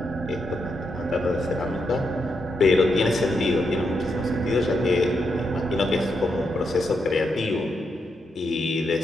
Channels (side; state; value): both; normal; correlation 0.82